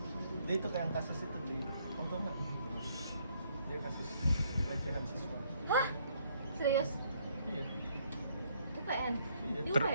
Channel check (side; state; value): both; inverted; correlation -0.68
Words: Dia itu kayak yang kasus itu di, tau nggak? Dia kasus pelecehan siswa. Hah? Serius? Iya. UPN? Iya. Di